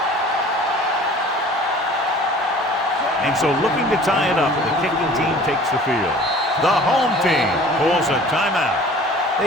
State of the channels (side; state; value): both; normal; correlation 0.47